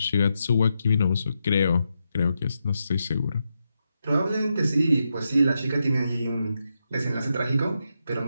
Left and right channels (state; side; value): inverted; both; correlation -0.85